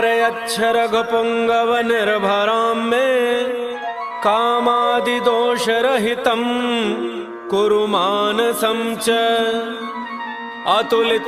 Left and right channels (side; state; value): both; identical; correlation 1.00